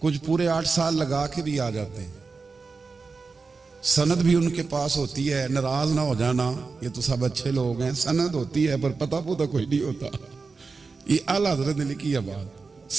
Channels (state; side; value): quieter; left; 4.5 dB